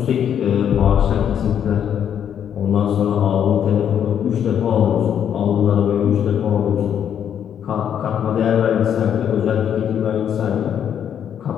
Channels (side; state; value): right; quieter; 9.0 dB